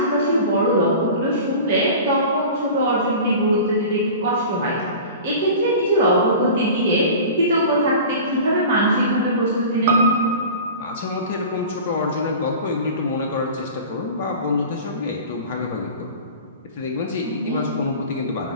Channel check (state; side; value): inverted; both; correlation -0.37